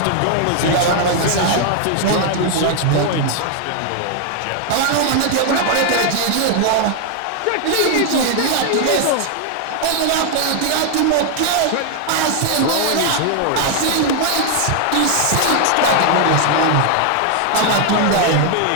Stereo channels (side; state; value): both; different; correlation 0.00